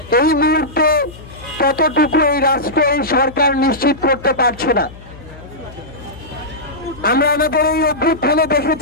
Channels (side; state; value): left; noise; hum, 18 dB below the sound